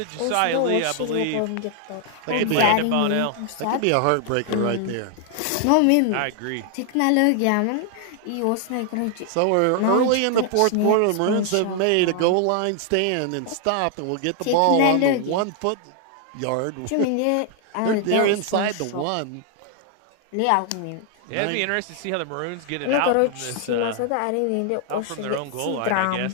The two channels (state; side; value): different; both; correlation 0.00